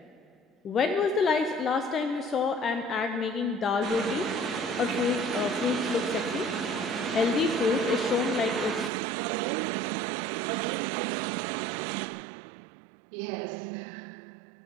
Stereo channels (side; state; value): left; drops out; at 8.9 s